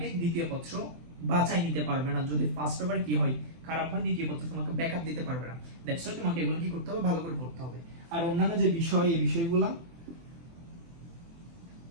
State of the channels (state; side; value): late; left; 24 ms